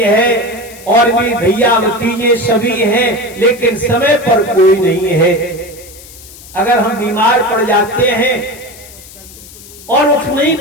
है, और भी भैया भतीजे सभी हैं, लेकिन समय पर कोई नहीं है। अगर हम बीमार पड़ जाते हैं और उठ नहीं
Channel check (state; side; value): noise; left; hiss, 19 dB below the sound